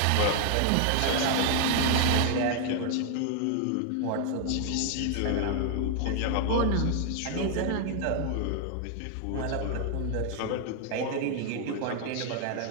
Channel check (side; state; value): both; different; correlation 0.00